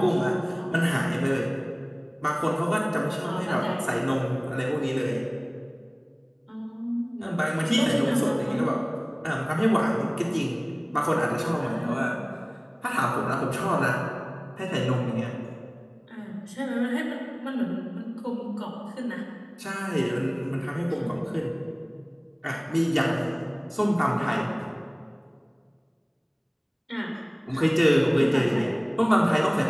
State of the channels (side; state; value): both; identical; correlation 1.00